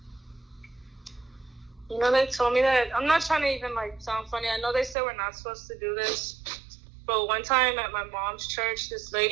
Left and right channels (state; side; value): drops out; left; at 5.0 s